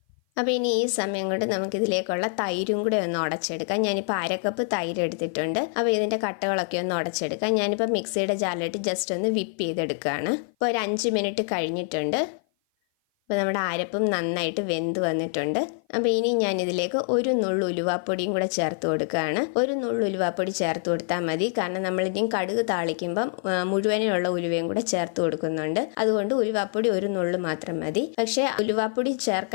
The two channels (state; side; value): silent; right; 55 dB below the other